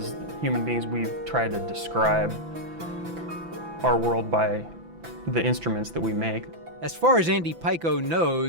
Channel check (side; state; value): left; late; 5.9 ms